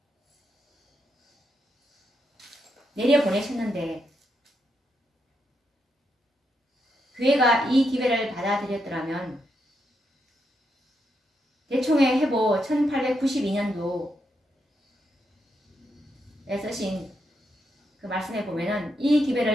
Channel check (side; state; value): both; normal; correlation 0.81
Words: 내려보내셨는데 교회가 이 기별을 받아들였더라면 대총회 회보 1892년도에 쓰신 그 말씀에 보면은 이